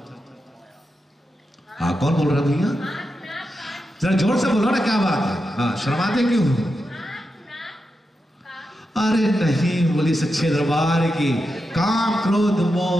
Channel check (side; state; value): both; normal; correlation 0.88